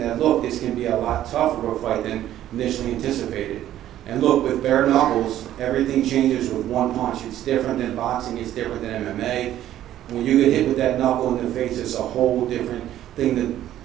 look, this can be a lot tougher of a fight than initially anticipated. And look, with bare knuckles, everything changes with one punch. It's different than boxing, it's different than MMA. When you get hit with that knuckle in the face, it's a whole different thing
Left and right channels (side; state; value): left; quieter; 12.4 dB